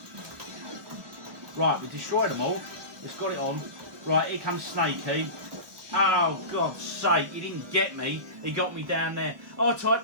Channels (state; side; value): late; left; 1.4 ms